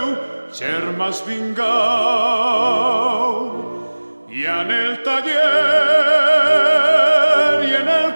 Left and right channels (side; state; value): both; inverted; correlation -1.00